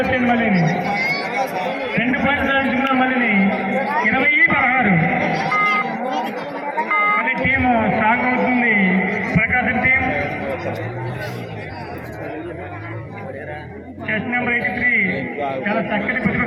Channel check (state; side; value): identical; both; correlation 1.00